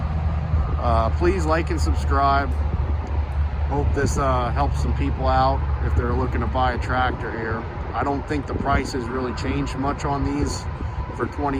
please like and subscribe. Hope this helps some people out if they're looking to buy a tractor here. I don't think the price has really changed much on these for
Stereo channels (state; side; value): identical; both; correlation 1.00